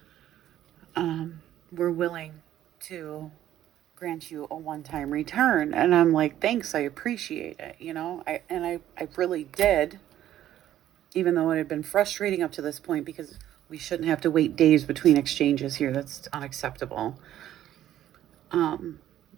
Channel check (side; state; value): left; quieter; 12.2 dB